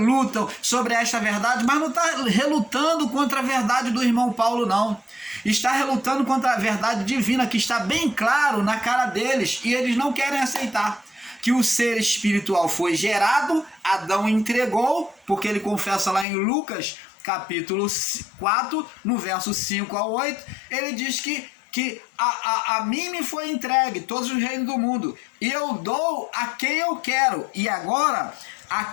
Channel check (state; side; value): drops out; right; at 16.2 s